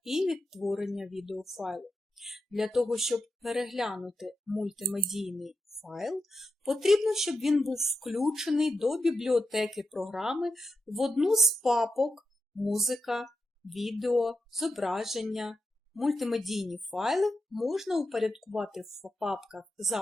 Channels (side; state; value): both; normal; correlation 0.86